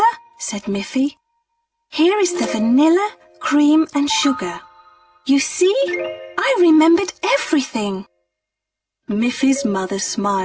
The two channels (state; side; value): identical; both; correlation 1.00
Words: said Miffy. Here is the vanilla, cream and sugar. You see, I remembered everything. Miffy's mother